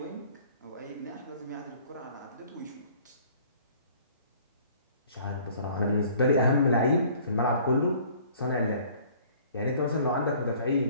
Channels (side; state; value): both; inverted; correlation -0.54